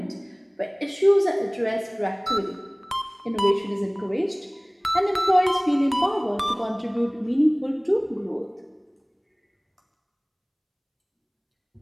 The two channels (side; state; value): both; identical; correlation 1.00